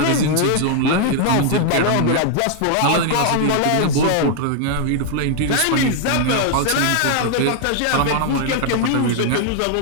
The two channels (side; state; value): both; different; correlation 0.00